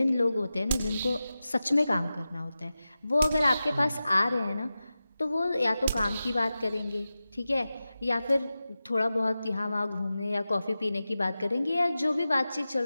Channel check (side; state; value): both; inverted; correlation -0.94